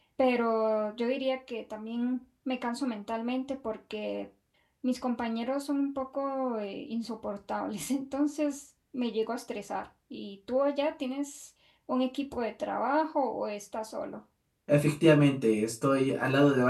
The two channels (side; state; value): both; identical; correlation 1.00